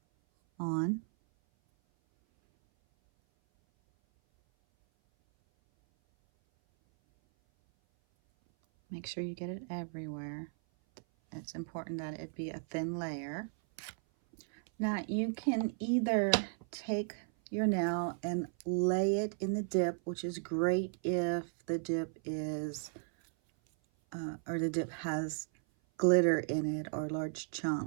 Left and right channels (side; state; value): left; silent; 54 dB below the other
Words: on. Make sure you get it everywhere. It's important that it be a thin layer. Now you can either take your nail and lay it in the dip, which is great if the dip is or the dip has glitter in it or large